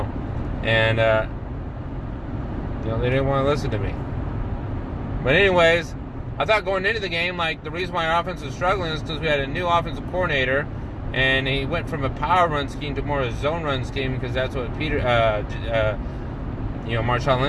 and they didn't want to listen to me. But anyways, I thought going into the game, like, the reason why our offense was struggling is because we had a new offensive coordinator, and he went from a power run scheme to more of a zone run scheme, because that's what Marshawn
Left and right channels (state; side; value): identical; both; correlation 1.00